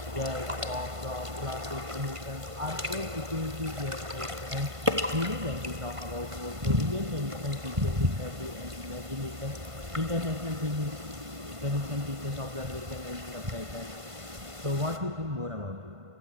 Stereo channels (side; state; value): left; late; 1.5 ms